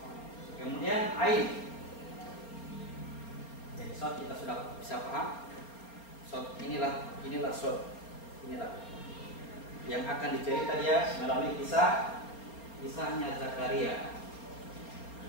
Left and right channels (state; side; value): late; right; 4.3 ms